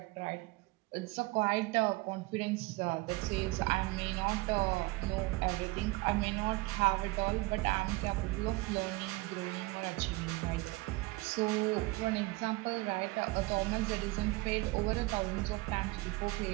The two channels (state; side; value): quieter; left; 22.4 dB